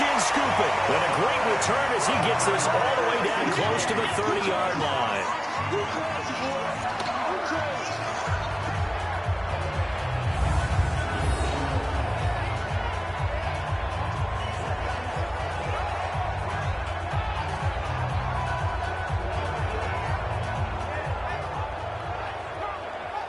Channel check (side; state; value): both; identical; correlation 1.00